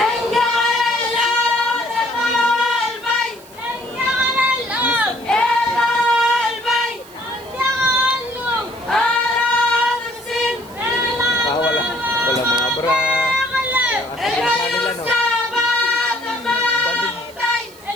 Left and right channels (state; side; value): noise; right; hiss, 24 dB below the sound